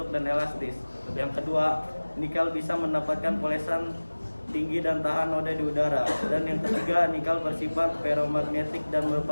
dan elastis. Yang kedua, nikel bisa mendapatkan polesan tinggi dan tahan noda di udara. Dan yang ketiga, nikel bersifat ferromagnetik dan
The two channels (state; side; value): inverted; both; correlation -1.00